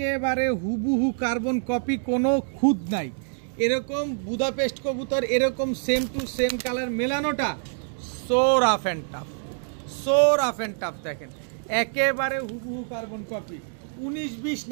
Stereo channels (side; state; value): left; silent; digital silence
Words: হুবহু কার্বন কপি, কোনো খুঁত নাই। এরকম বুদাপেস্ট কবুতর এরকম সেম টু সেম কালার মেলানোটা so rough and tough, so rough and tough. দেখেন একেবারে হুবহু কার্বন কপি, 19-20